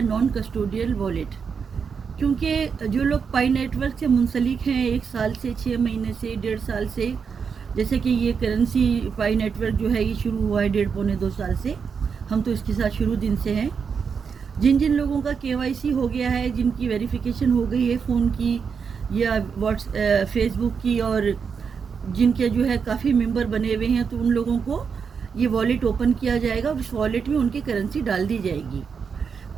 نان کسٹوڈیل والیٹ۔ کیونکہ جو لوگ پائی نیٹ ورک سے منسلک ہیں 1 سال سے 6 مہینے سے 1.5 سال سے، جیسے کہ یہ کرنسی پائی نیٹ ورک جو ہے یہ شروع ہوا ہے 1.5 پونے 2 سال سے، ہم تو اس کے ساتھ شروع دن سے ہیں۔ جن لوگوں کا KYC ہو گیا ہے، جن کی ویریفیکیشن ہو گئی ہے فون کی یا فیس بک کی، اور جن کے جو ہے کافی ممبر بنے ہوئے ہیں، تو ان لوگوں کو یہ والیٹ اوپن کیا جائے گا اور اس والیٹ میں ان کی کرنسی ڈال دی جائے گی۔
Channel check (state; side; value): quieter; left; 6.2 dB